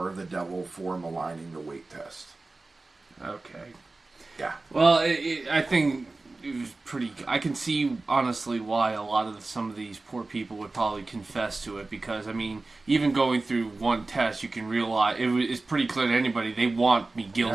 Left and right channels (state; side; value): quieter; left; 3.4 dB